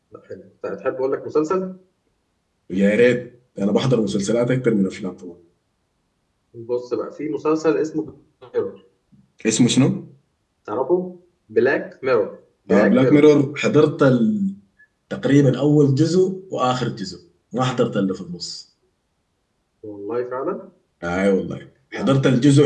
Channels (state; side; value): identical; both; correlation 1.00